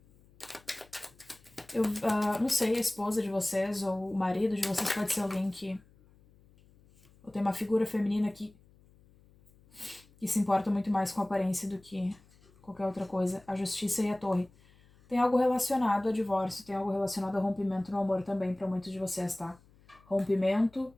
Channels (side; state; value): left; noise; hum, 28 dB below the sound